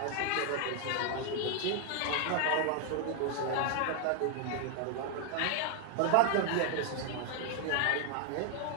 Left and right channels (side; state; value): both; different; correlation 0.01